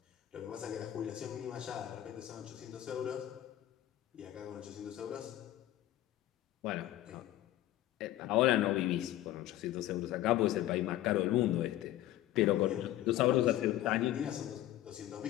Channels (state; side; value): quieter; right; 14.1 dB